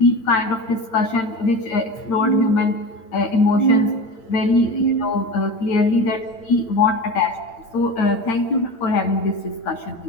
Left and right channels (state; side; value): late; right; 8.9 ms